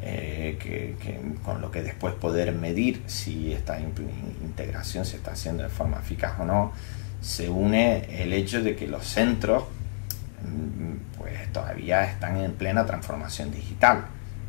con lo que después poder medir si esta integración se está haciendo de forma eficaz o no, se une el hecho de que los centros pues todavía están en plena transformación digital.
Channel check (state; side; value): silent; right; digital silence